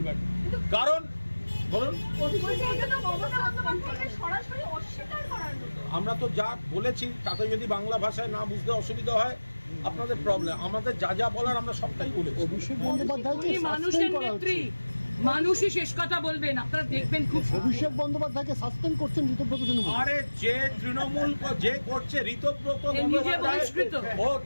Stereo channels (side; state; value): both; inverted; correlation -1.00